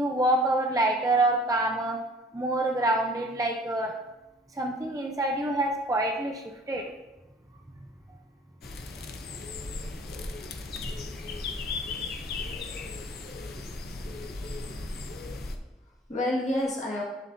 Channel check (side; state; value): both; normal; correlation 0.50